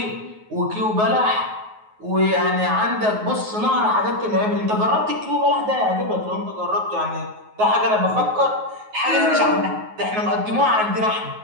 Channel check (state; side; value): late; left; 9.4 ms